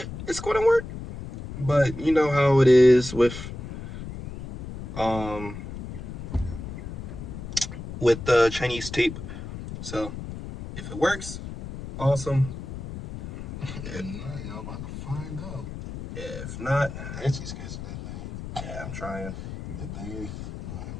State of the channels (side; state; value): left; noise; rumble, 9 dB below the sound